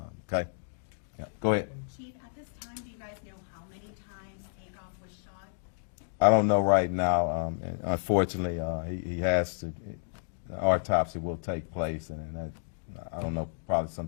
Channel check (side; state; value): right; silent; digital silence